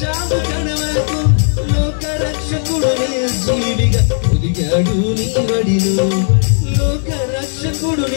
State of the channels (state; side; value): silent; right; 63 dB below the other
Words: కడ వరకు. లోక రక్షకుడు నిర్జీవిగా ఒదిగాడు నీ వడిలో. లోక రక్షకుడు